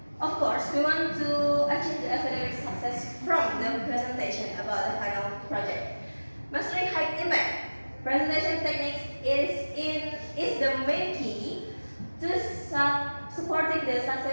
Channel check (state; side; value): inverted; both; correlation -1.00